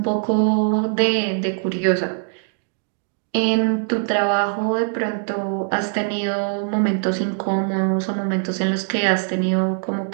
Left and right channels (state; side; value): silent; left; 64 dB below the other